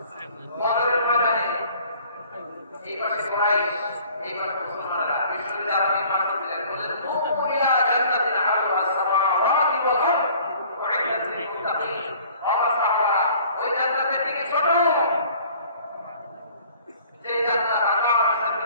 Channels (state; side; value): inverted; both; correlation -0.52